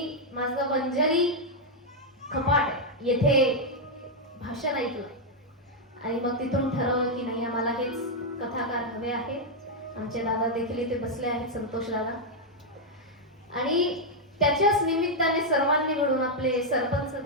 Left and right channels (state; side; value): normal; both; correlation -0.02